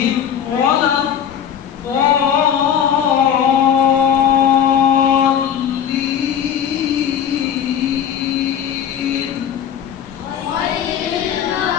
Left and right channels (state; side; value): quieter; right; 8.8 dB